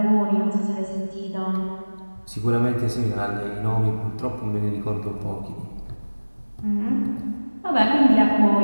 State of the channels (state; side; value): inverted; both; correlation -1.00